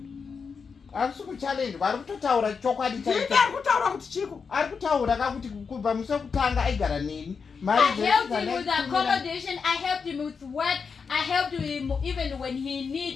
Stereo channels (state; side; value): quieter; right; 5.6 dB